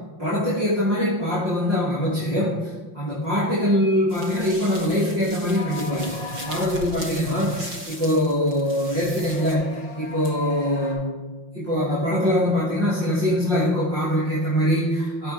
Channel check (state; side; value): late; left; 5.7 ms